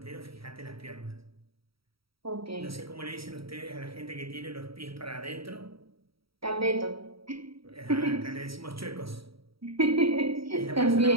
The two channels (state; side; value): late; left; 0.75 ms